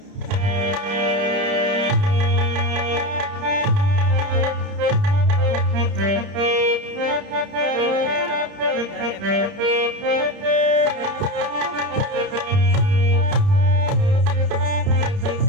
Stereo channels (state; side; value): late; left; 30 ms